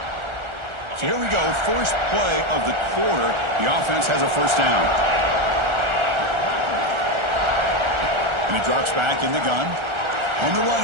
So here we go, first play of the quarter. The offense has a 1st down. And he drops back in the gun. On the run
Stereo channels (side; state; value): left; late; 1.4 ms